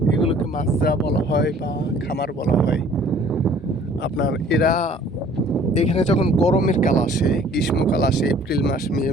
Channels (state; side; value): normal; both; correlation 0.54